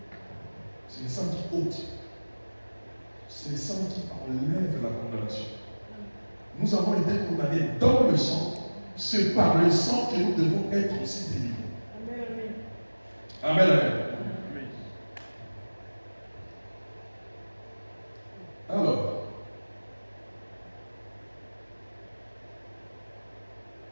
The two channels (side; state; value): both; inverted; correlation -1.00